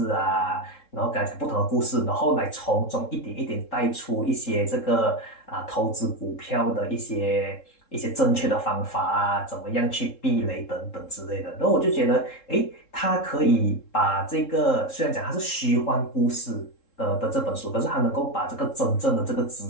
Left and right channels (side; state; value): right; late; 3.7 ms